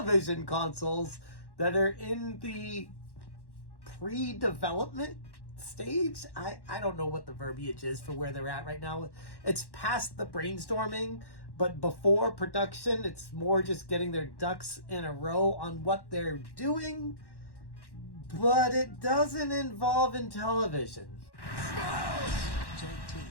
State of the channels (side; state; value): right; late; 1.1 ms